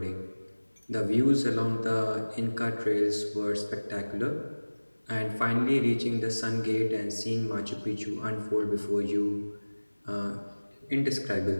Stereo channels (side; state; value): both; inverted; correlation -1.00